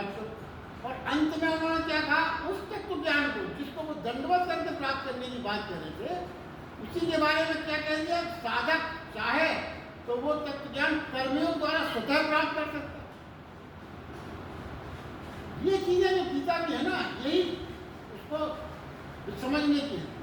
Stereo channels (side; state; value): both; identical; correlation 1.00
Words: करो। और अंत में उन्होंने क्या कहा? उस तत्व ज्ञान को जिसको वो दंडवत करके प्राप्त करने की बात कर रहे थे, उसी के बारे में क्या कह दिया? साधक चाहे तो वो तत्व ज्ञान कर्मियों द्वारा स्वतः प्राप्त कर सकता है। ये चीजें जो गीता की है ना, यही उसको समझने की है।